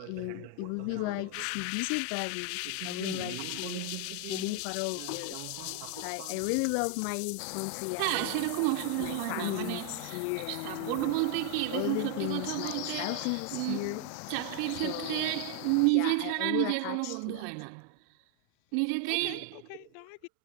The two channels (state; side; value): different; both; correlation 0.00